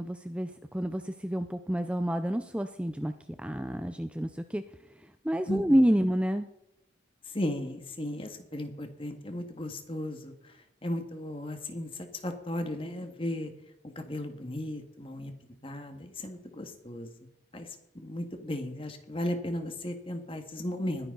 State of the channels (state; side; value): normal; both; correlation 0.92